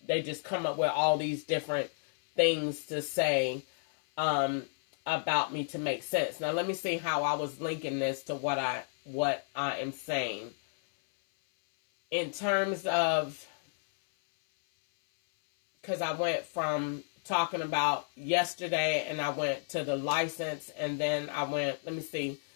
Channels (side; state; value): right; silent; 57 dB below the other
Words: they just come up with all these different things to say about me to make sense. Now let me see how I was linking this to what I am saying. In terms of, because I went from talking about yesterday, and I went to the license, and then I went, let me see